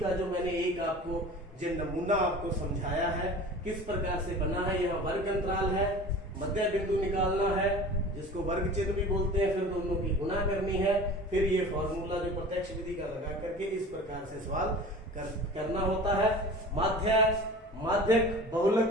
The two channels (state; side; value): normal; both; correlation 0.39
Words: जो मैंने एक आपको जो नमूना आपको समझाया है किस प्रकार से बना है, यहाँ वर्ग अंतराल है, मध्य बिंदु निकालना है जिसको वर्ग चिन्ह भी बोलते हैं, फिर दोनों की गुणा करनी है, फिर ये फॉर्मूला जो प्रत्यक्ष विधि का लगा करके इस प्रकार से सवाल करना होता है। माध्यक,